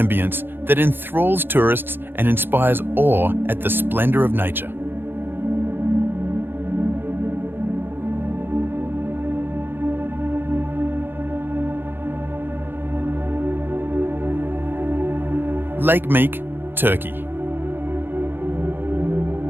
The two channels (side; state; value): left; late; 0.10 ms